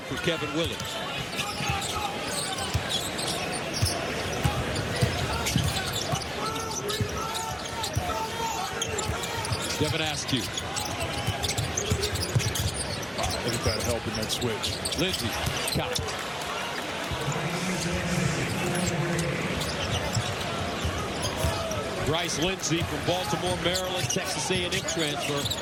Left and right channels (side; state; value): both; identical; correlation 1.00